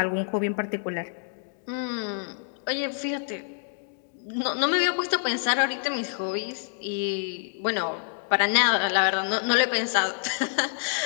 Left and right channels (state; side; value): silent; right; digital silence